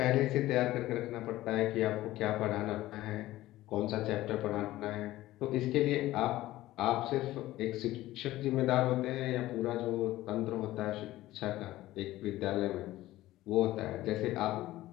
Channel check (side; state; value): right; quieter; 16.1 dB